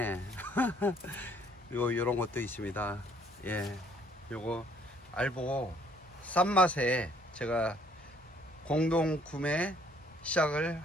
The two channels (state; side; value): normal; both; correlation 0.62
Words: 그리고 요런 것도 있습니다. 예, 요거 알보 싼 맛에 제가 공동 구매 시작을